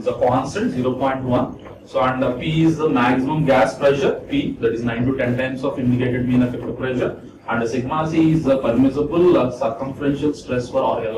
a constant 0.1. So and P is the maximum gas pressure, P, that is 9 to 10 times of indicated mean effective pressure, and sigma C is the permissible circumferential stress for, or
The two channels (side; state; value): both; identical; correlation 1.00